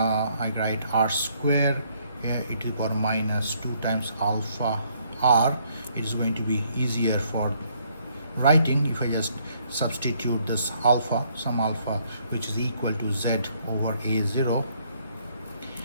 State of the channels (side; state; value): both; inverted; correlation -0.68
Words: write r square e to the power minus 2 times alpha r. It is going to be easier for writing if I just substitute this alpha, some alpha, which is equal to z over a0,